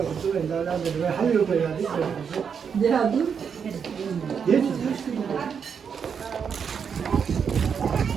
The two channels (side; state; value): left; quieter; 6.8 dB